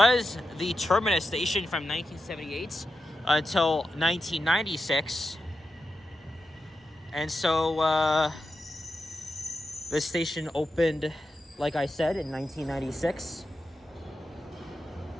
the terminus station from 1978 until 1996. And so this station opened, like I said, in 1996.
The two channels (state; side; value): normal; both; correlation 0.90